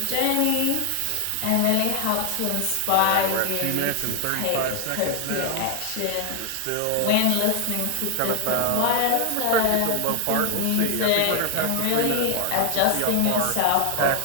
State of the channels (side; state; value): both; different; correlation 0.00